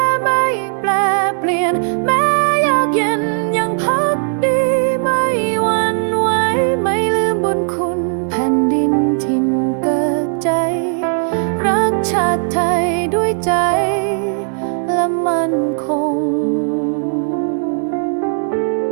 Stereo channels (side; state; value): left; silent; 68 dB below the other